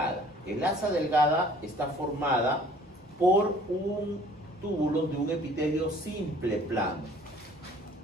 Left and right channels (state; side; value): normal; both; correlation 0.53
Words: El asa delgada está formada por un túbulo de un epitelio simple plano.